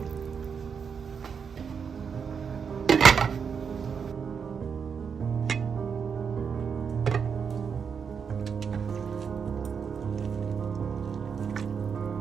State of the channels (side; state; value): left; quieter; 6.5 dB